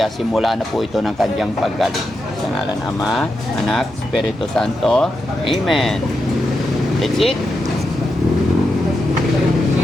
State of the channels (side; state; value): both; normal; correlation 0.86